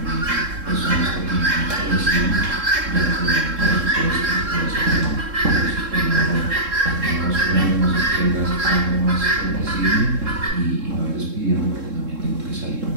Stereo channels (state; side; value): late; left; 3.7 ms